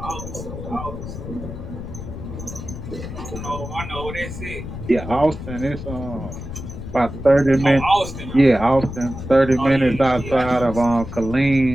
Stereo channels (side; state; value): left; noise; rumble, 9 dB below the sound